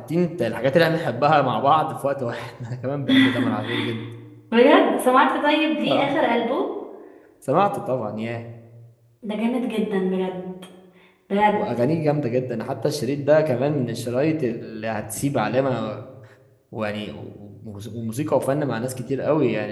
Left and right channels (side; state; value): both; identical; correlation 1.00